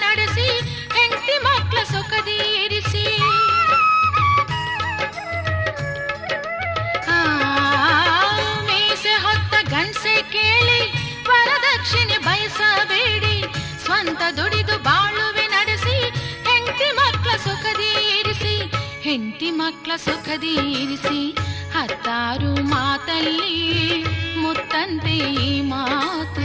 ನಡೆಸಿ, ಹೆಂಡತಿ ಮಕ್ಕಳ ಸುಖದಿ ಇರಿಸಿ. ಮೀಸೆ ಹೊತ್ತ ಗಂಡಸೆ ಕೇಳಿ ವರದಕ್ಷಿಣೆ ಬಯಸಬೇಡಿ. ಸ್ವಂತ ದುಡಿದು ಬಾಳುವೆ ನಡೆಸಿ, ಹೆಂಡತಿ ಮಕ್ಕಳ ಸುಖದಿ ಇರಿಸಿ. ಹೆಂಡತಿ ಮಕ್ಕಳ ಸುಖದಿ ಇರಿಸಿ. ಹತ್ತಾರು ಮಾತಲ್ಲಿ ಮುತ್ತಂತೆ ಈ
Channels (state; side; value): identical; both; correlation 1.00